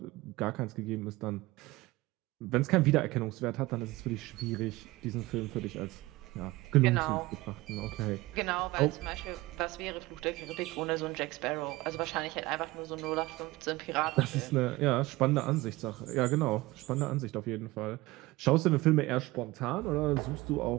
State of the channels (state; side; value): quieter; left; 20.1 dB